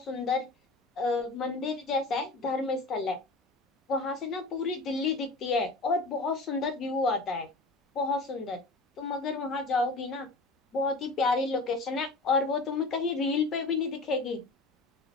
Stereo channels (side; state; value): right; quieter; 3.3 dB